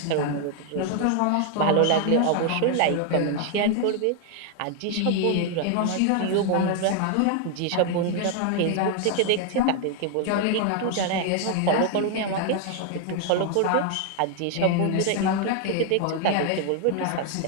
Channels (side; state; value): both; different; correlation 0.00